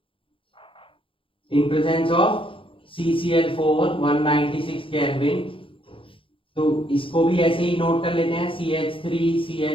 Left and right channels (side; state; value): right; late; 0.25 ms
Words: इन प्रेजेंस ऑफ CCl4 196 केल्विन। तो इसको भी ऐसे ही नोट कर लेते हैं,